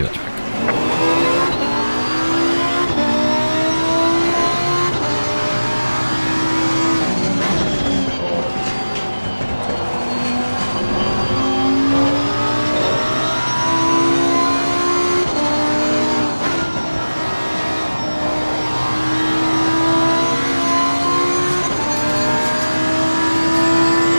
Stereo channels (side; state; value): both; inverted; correlation -1.00